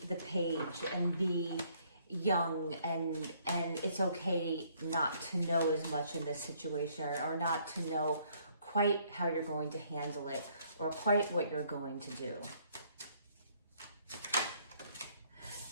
the page and be young, and it's okay not to know as much in this situation, or not to know quite how you're going to handle it or quite what you're going to do.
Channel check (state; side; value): inverted; both; correlation -0.65